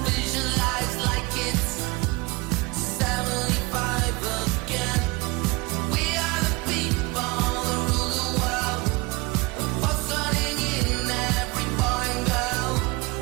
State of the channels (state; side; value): quieter; left; 25.0 dB